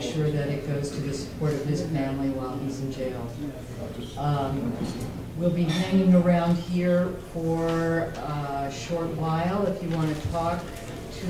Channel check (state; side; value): identical; both; correlation 1.00